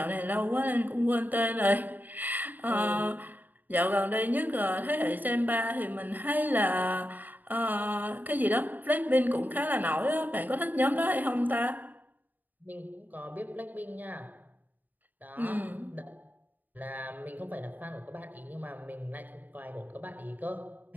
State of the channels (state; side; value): late; left; 0.085 ms